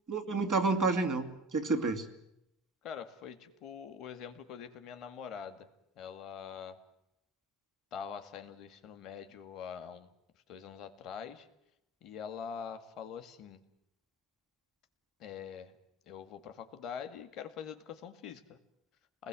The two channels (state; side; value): normal; both; correlation 0.36